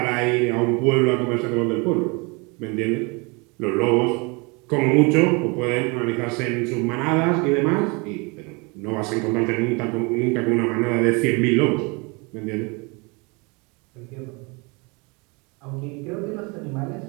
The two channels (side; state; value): left; quieter; 29.3 dB